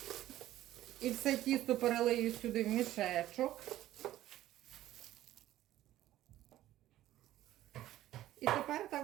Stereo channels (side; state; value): left; quieter; 14.1 dB